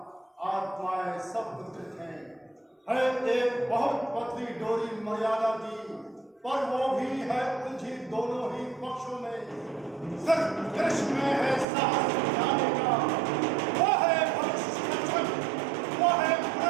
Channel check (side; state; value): left; drops out; at 11.7 s